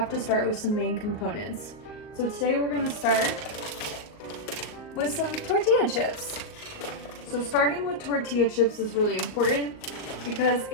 to start with some main components. So today we're going to start with some tortilla chips. So starting with tortilla chips is really important because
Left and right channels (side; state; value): right; late; 38 ms